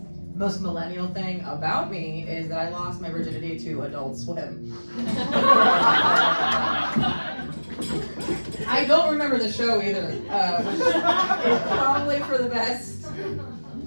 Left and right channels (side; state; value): both; inverted; correlation -1.00